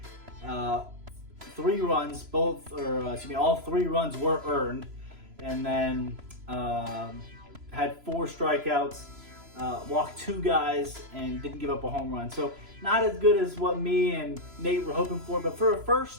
3 runs, all 3 runs were earned, and then had 4 strikeouts, walked 2 guys, and didn't give up a home run. So not as good as what me and Nate were hoping for, but for a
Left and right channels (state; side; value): late; left; 3.0 ms